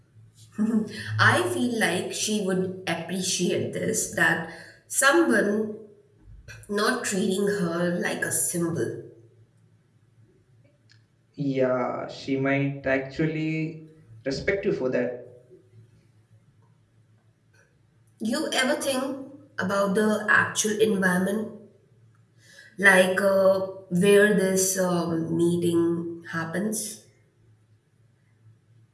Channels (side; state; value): both; identical; correlation 1.00